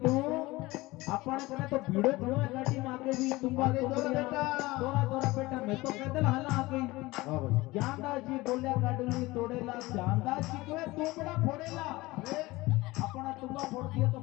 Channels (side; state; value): right; quieter; 20.5 dB